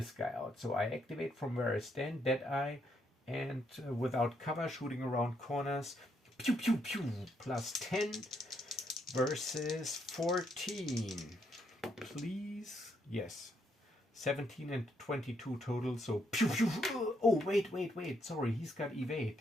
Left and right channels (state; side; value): normal; both; correlation 0.75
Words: guy out. So I activate from where I stand, Deadeye, and without cover, shooting around corners. Pew pew pew, plus 10 versus 14. Please, yes. 17 and 22 total, so pew pew. Oh, wait. Sorry, he's got